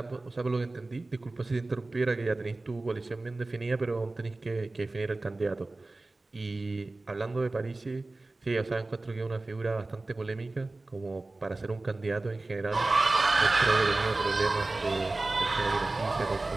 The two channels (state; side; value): quieter; left; 3.1 dB